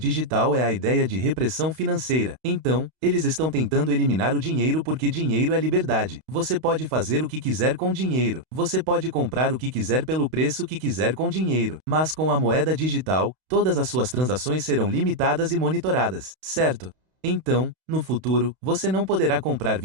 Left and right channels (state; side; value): late; left; 32 ms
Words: é a ideia de repressão financeira. Então, eles estão tentando eliminar o dinheiro porque dinheiro é liberdade. Você pode fazer o que quiser com dinheiro. Você pode comprar o que quiser pelo preço que quiser com dinheiro. Mas com a moeda digital, todas as suas transações serão limitadas e monitoradas, certo? Então, no futuro, você não poderá comprar